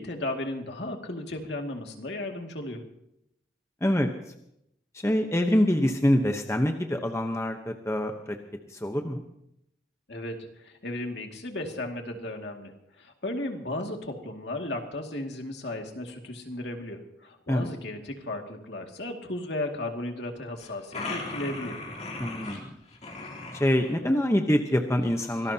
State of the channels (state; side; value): normal; both; correlation 0.79